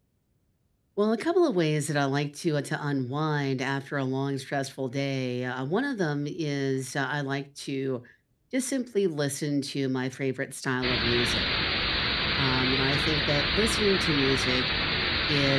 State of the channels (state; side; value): identical; both; correlation 1.00